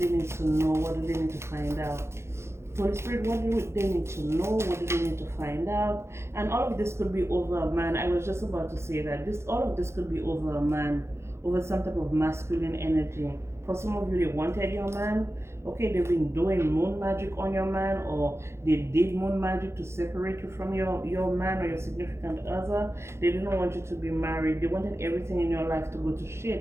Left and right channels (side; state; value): left; late; 0.13 ms